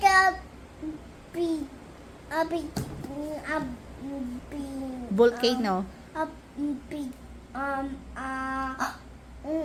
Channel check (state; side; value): identical; both; correlation 1.00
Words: a big, Volcano. a big, a